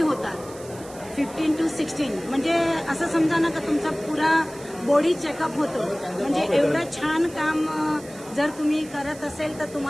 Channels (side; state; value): right; noise; hiss, 19 dB below the sound